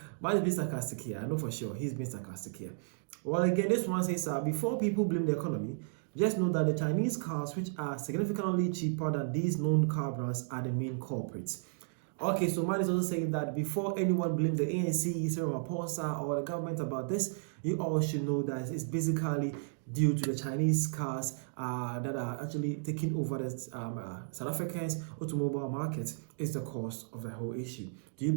Man is being sarcastic here. I know for sure he's being sarcastic here. Well, again, this one says, before people blame the economy, just know that the Chinese cars, which are significantly cheaper than these known car brands, are the main culprits. Okay, so man is also saying that before anyone blames the ANC, Cyril Ramaphosa, or the government about this, you all should know that it's basically due to the Chinese cars that are actually taking over the South Africans' automobile market is the cause of the whole issue. Do you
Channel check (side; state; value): left; silent; digital silence